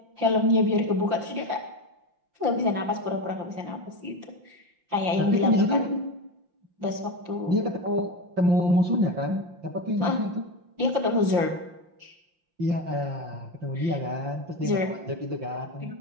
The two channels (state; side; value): late; left; 5.7 ms